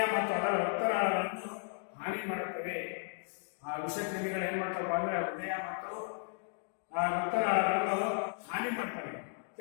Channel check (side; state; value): right; silent; 55 dB below the other